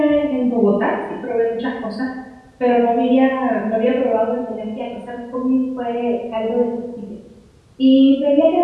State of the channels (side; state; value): both; identical; correlation 1.00